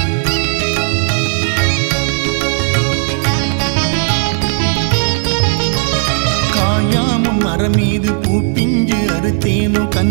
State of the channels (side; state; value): left; silent; 56 dB below the other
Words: காயாமுன் மரம் மீது பூப்பிஞ்சு அறுத்தேனோ